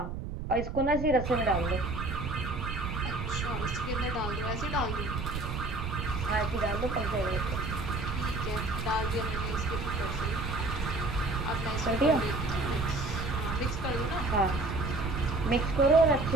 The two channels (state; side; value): noise; right; rumble, 5 dB below the sound